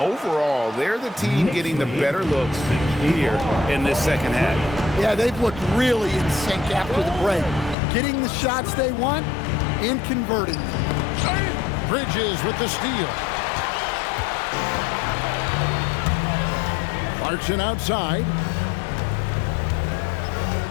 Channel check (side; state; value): right; drops out; at 7.8 s